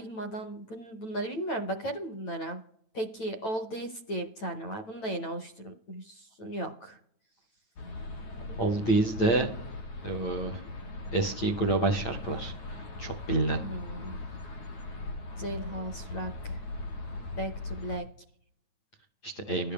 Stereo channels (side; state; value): right; late; 9.0 ms